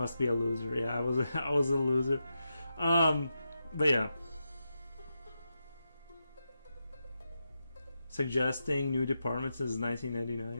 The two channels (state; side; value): inverted; both; correlation -0.88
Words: be a loser. Yeah, I was I was a loser. But yeah. Suggesting new departments since